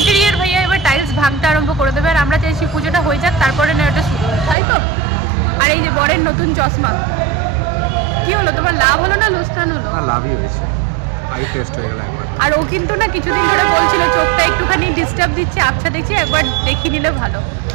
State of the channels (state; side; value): drops out; left; at 4.5 s